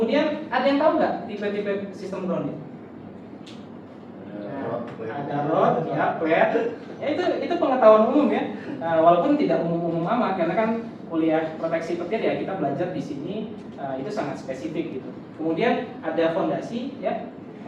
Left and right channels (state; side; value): identical; both; correlation 1.00